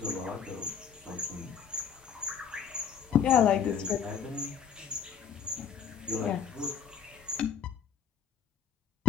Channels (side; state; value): right; quieter; 7.5 dB